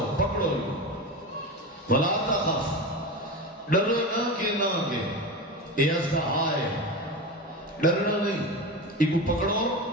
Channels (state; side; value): normal; both; correlation 0.24